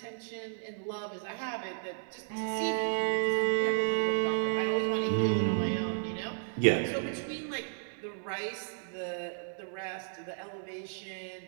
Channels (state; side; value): silent; left; digital silence